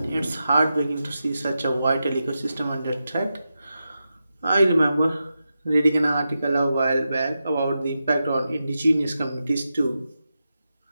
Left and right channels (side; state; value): both; inverted; correlation -0.89